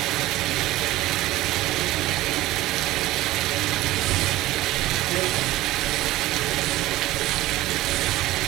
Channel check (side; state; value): left; quieter; 16.8 dB